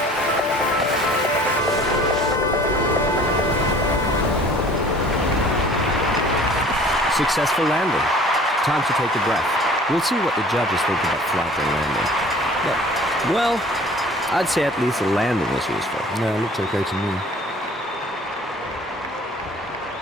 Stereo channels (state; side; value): normal; both; correlation 0.49